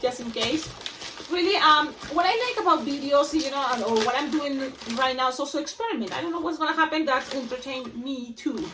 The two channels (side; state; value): both; identical; correlation 1.00